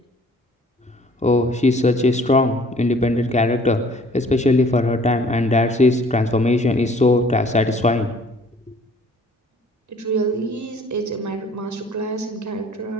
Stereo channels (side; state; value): both; normal; correlation 0.55